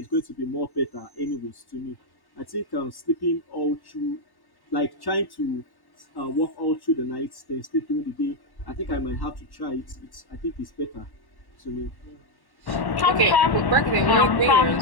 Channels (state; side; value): late; right; 1.1 ms